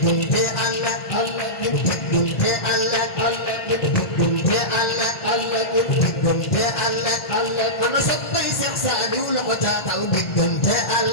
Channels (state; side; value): late; right; 2.0 ms